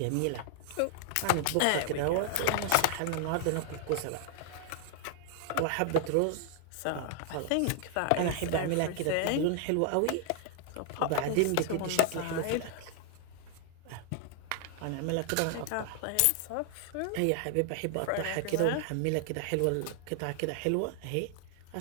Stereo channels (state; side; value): different; both; correlation 0.00